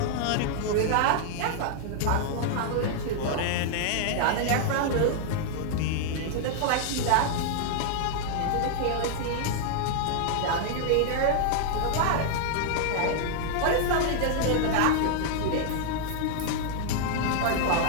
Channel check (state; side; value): different; both; correlation -0.01